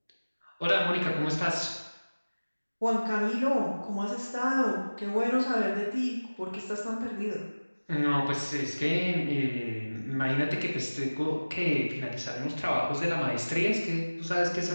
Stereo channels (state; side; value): inverted; both; correlation -1.00